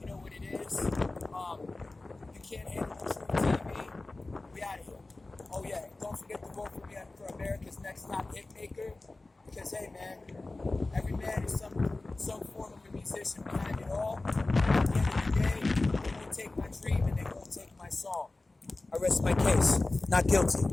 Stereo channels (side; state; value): right; quieter; 3.1 dB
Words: You know what it is. You can't handle the truth TV. We out of here. Oh yeah, don't forget to vote for me for America's Next Top Hit Maker. Because hey man, every man is some form of a musician behind it all. At the end of the day, they won't take my dream and they won't take my song. I rest my case. Not guilty.